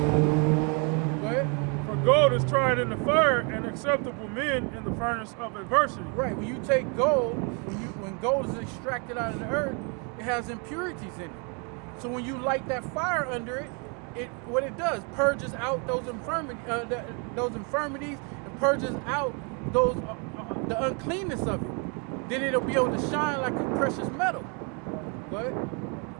Go ahead. For gold is tried in the fire, and acceptable men in the furnace of adversity. Right. When you take gold, when gold is extracted out of the earth, it has impurities in it. So when you light that fire under it, what it does purges out those infirmities, and purges out the uncleanness of it. Then it'll be able to shine like a precious metal. Go ahead.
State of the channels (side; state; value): left; quieter; 35.6 dB